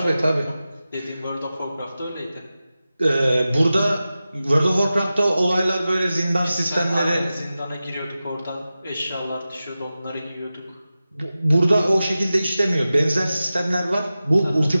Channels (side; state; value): both; inverted; correlation -0.94